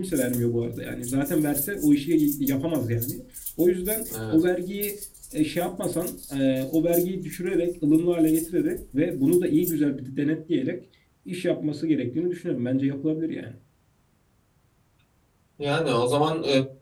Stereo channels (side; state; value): both; identical; correlation 1.00